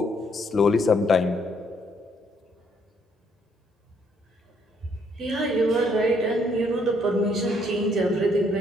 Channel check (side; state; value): both; normal; correlation 0.69